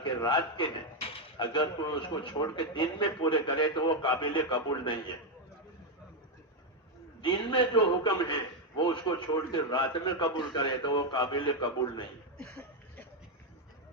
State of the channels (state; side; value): normal; both; correlation 0.04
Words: کے رات کے ہیں اگر کوئی اس کو چھوڑ کے دن میں پورے کرے تو وہ قابل قبول نہیں ہے، دن میں جو حکم ہے وہ اس کو چھوڑ کے رات میں قبول کرے تو وہ قابل قبول نہیں ہے،